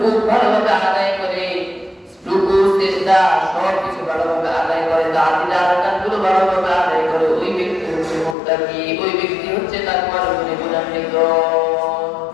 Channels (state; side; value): drops out; right; at 8.3 s